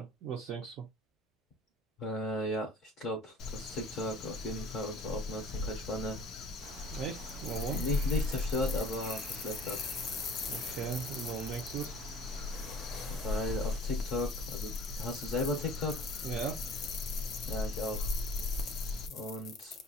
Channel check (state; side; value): normal; both; correlation 0.47